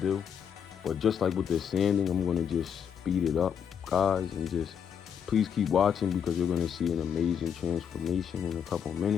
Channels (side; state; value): right; quieter; 7.9 dB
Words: but just like with the sanding, I'm gonna just speed it up, guys, and just please keep watching because you're going to see an amazing transformation in a couple